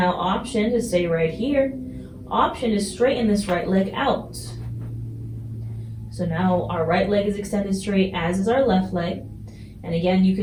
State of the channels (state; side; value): identical; both; correlation 1.00